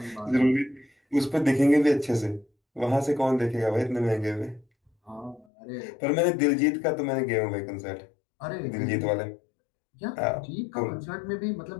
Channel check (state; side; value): drops out; right; at 5.5 s